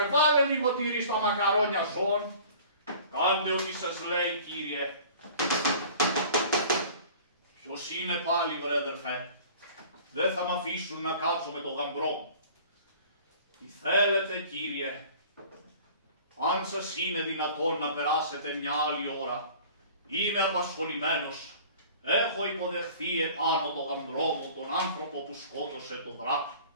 Βάλε λίγο τυρί στα μακαρόνια ζών. Κάντε ό,τι σας λέει κύριε. Ποιος είναι πάλι βρέδερφε? Δεν θα μ' αφήσουν να κάτσω με το γαμπρό μου. Τι θέλετε κύριε? Αν σας είναι δυνατόν να περάσετε μια άλλη ώρα, είμαι απασχολημένος. Έχω υποδεχθεί επάνω το γαμπρό μου τον άνθρωπο που σκότωσε τον δράκο.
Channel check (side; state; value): both; inverted; correlation -0.46